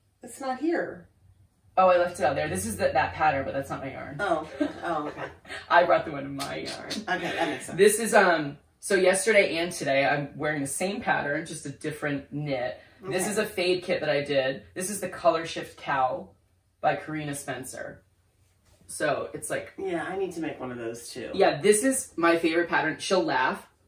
It's not here. Oh, I left it out there. This is that pattern, but that's not my yarn. Oh, okay. I brought the one in my yarn. Okay, that makes sense. This is so yesterday and today I'm wearing the same pattern, just a different knit. Okay. This is a fade kit that I did. This is the Color Shift Cowl by Carina Spencer. So it's like, yeah, I need to make one of those too. yeah, this is my favorite pattern. She'll laugh.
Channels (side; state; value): both; identical; correlation 1.00